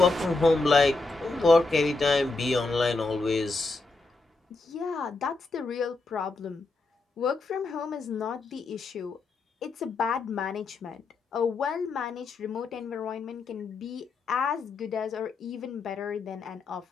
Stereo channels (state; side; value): quieter; right; 3.6 dB